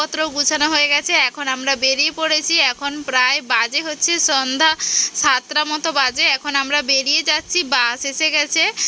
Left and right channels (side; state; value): both; identical; correlation 1.00